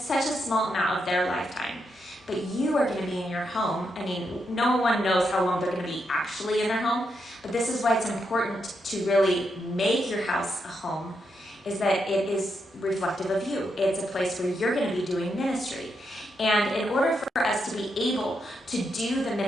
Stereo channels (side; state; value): both; normal; correlation 0.82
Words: such a small amount of their lifetime. But you are going to be in your home. I mean, no one knows how long they're going to be actually in their home, but this is why it's important to really make your house a home, is that it is reflective of you. It's a place where you're going to be doing ministry. And in order for us to be able to do the